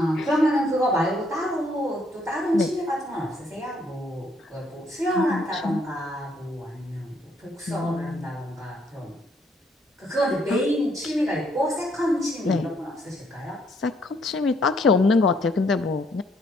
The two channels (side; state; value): both; normal; correlation 0.69